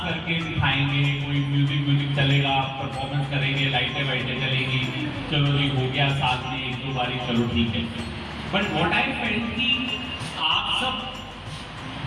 करके दिखाएंगे, कोई म्यूजिक चलेगा, परफॉर्मेंस करेंगे, लाइटें वाइटें चलेगी, चलो जी हो गया साथ में एक दो बारी, चलो ठीक है। बट व्हाट आई फेल्ट कि आप सब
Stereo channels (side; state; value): both; identical; correlation 1.00